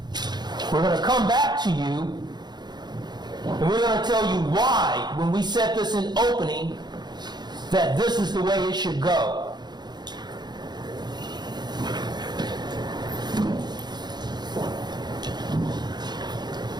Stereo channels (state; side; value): late; left; 0.21 ms